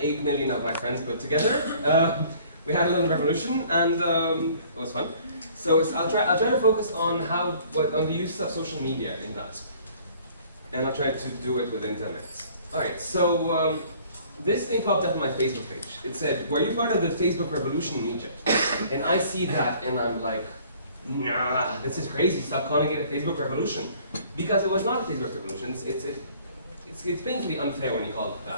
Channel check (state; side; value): inverted; both; correlation -0.54